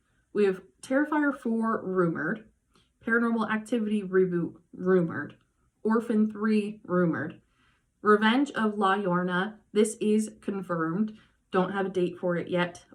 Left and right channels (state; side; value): identical; both; correlation 1.00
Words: We have Terrifier 4 rumored, Paranormal Activity reboot rumored, Orphan 3 rumored, Revenge of La Llorona. This is confirmed. Don't have a date for it yet,